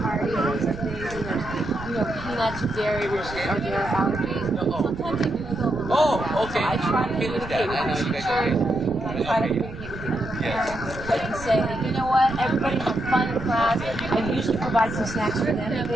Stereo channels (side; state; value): right; noise; rumble, 12 dB below the sound